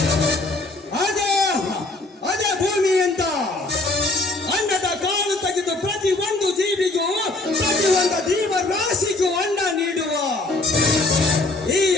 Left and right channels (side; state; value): right; quieter; 3.1 dB